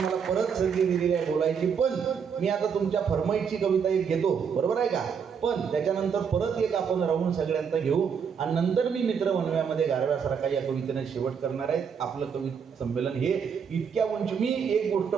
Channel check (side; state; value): left; quieter; 6.8 dB